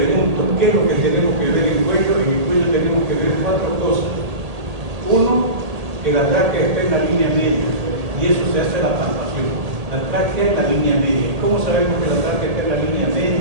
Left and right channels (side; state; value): left; late; 1.8 ms